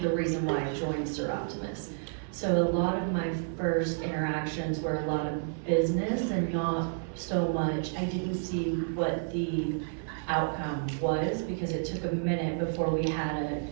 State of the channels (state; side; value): silent; left; 57 dB below the other